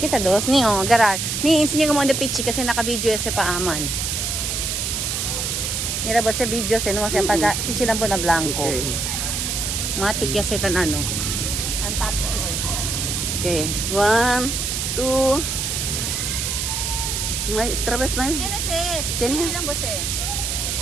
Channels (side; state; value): right; noise; hiss, 1 dB below the sound